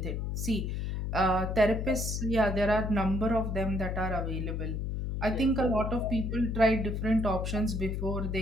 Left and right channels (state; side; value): noise; left; hum, 2 dB below the sound